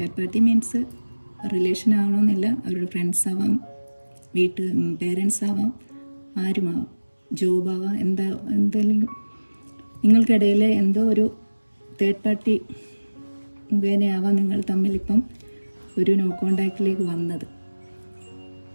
പാർട്ടി മീൻസ് റിലേഷൻ ആവണമെന്നില്ല, അവരുടെ ഫ്രണ്ട്സ് ആവാം, പേരൻസ് ആവാം, ആരുമാവാം, ജോബാവാം, എന്തെങ്കിലും നിങ്ങൾക്കിടയിൽ എന്തോ ഒരു തേർഡ് പാർട്ടി മുഖേനയാവാം നിങ്ങൾ തമ്മിലിപ്പം ഒരു നോ കോണ്ടാക്റ്റിലേക്ക് വന്നത്.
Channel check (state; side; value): inverted; both; correlation -1.00